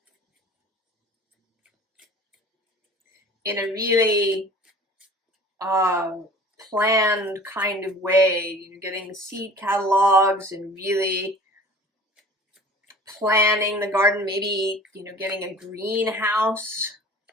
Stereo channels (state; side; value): normal; both; correlation 0.44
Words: In a really planned kind of way, you know, getting seed catalogs and really planning the garden, maybe, you know, getting a greenhouse.